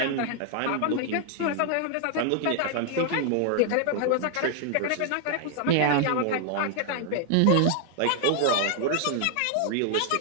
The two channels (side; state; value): both; different; correlation 0.00